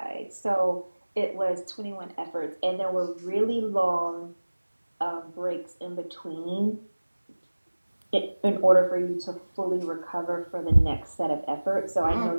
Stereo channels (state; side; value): inverted; both; correlation -1.00